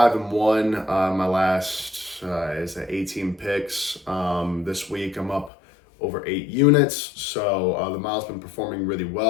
1. My last is at 18 picks. This week I'm up over 8 units, so the model's been performing really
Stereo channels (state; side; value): drops out; right; at 5.5 s